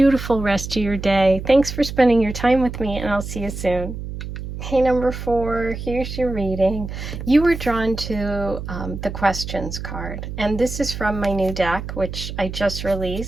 rest of your day. Thanks for spending your time with me, and I'll see you soon. Hey, number 4, here's your reading. You were drawn to the questions card, and this is from my new deck, which I just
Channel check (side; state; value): right; noise; hum, 8 dB below the sound